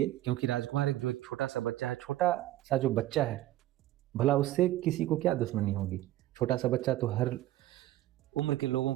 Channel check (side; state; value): left; quieter; 15.0 dB